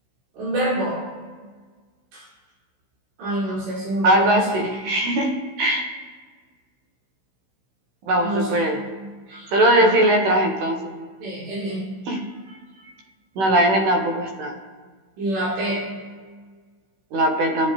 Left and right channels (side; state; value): left; late; 16 ms